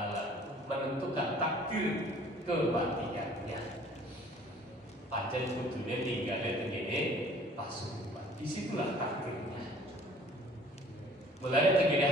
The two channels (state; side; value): normal; both; correlation 0.53